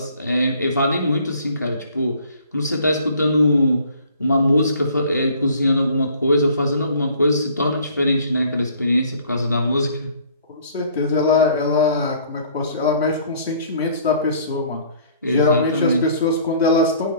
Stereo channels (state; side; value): inverted; both; correlation -0.56